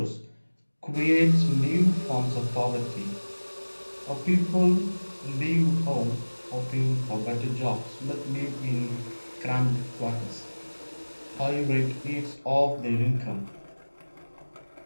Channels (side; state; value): both; inverted; correlation -1.00